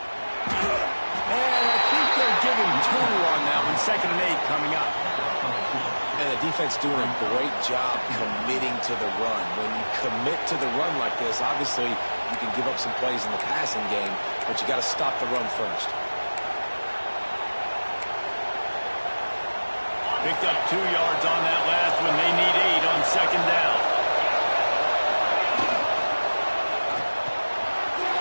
And I think they're giving 2 on that one. 2nd and 8 coming up. And the defense doing a great job committing to the run. When you commit to the run like this, obviously you can give up some plays in the passing game, but you got to stop the run first. Picked up 2 yards on that last one. They need 8 on 2nd down.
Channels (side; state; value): both; inverted; correlation -1.00